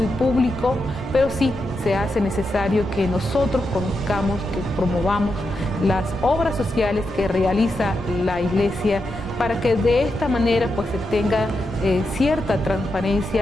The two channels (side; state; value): both; normal; correlation 0.86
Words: público, pero sí se hace necesario que nosotros conozcamos, que promovamos las obras sociales que realiza la Iglesia, para que de esta manera pues se tenga cierta